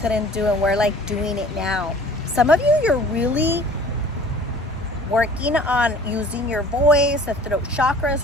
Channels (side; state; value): both; normal; correlation 0.48